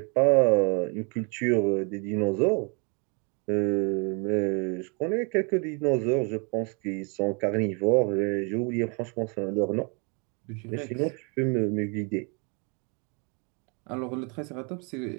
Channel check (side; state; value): left; quieter; 34.4 dB